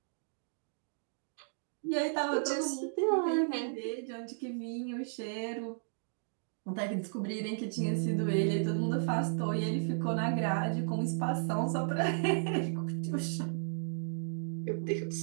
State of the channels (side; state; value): left; silent; digital silence